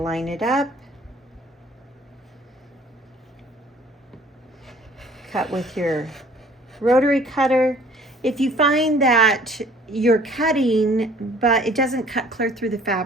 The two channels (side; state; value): both; normal; correlation 0.55